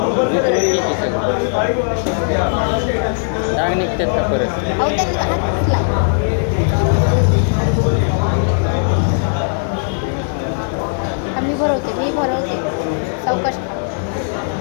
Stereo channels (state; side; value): silent; right; digital silence